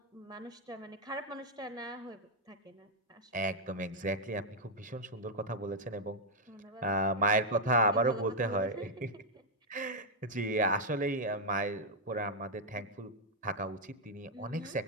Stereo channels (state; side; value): normal; both; correlation -0.02